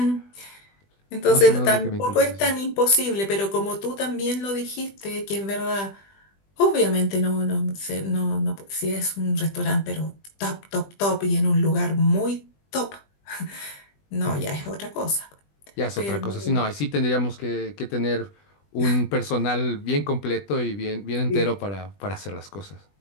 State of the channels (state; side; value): late; right; 20 ms